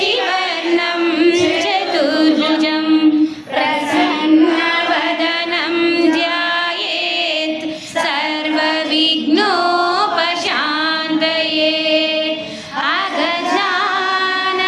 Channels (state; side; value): identical; both; correlation 1.00